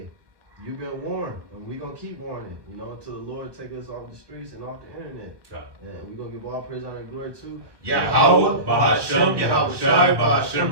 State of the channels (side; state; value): left; late; 1.2 ms